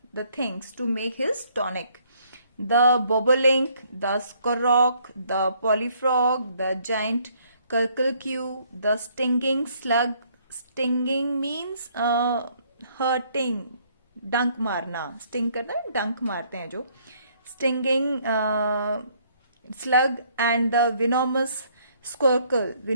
the things to make his tonic. The bobolink, the skorok, the polyfrog, the giant curculque, the stinging slug. Stinging means hurting, डंक मारना. Sting करना, डंक मारते हैं जो. Stinging slug and the venomous squircle.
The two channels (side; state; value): both; inverted; correlation -0.65